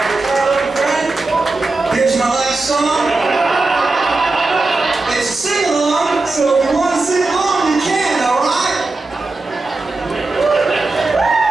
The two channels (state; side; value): quieter; left; 3.4 dB